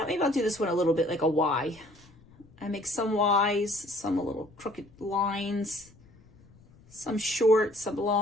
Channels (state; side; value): noise; left; rumble, 27 dB below the sound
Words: maybe I'll do this one a little bit like a Y. I make some Ys, some a little crooked lines, some short, some